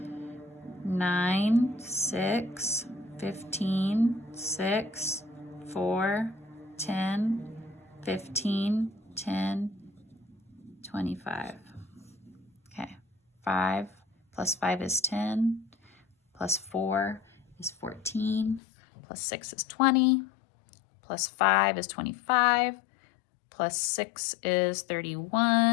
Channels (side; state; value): right; drops out; at 18.6 s